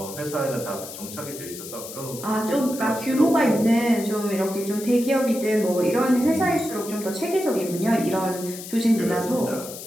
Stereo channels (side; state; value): left; noise; hiss, 12 dB below the sound